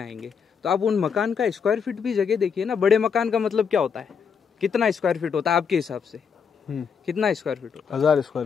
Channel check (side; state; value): right; quieter; 6.6 dB